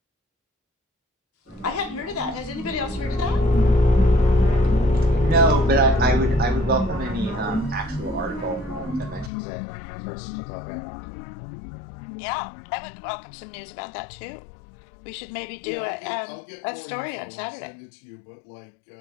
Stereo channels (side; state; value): right; drops out; at 9.3 s